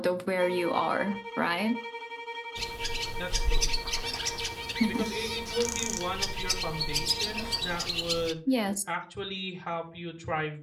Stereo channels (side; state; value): both; identical; correlation 1.00